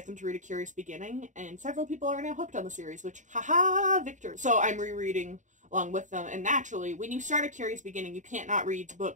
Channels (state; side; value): late; left; 0.36 ms